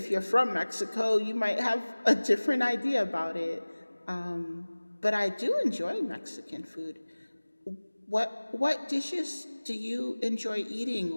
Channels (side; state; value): both; inverted; correlation -1.00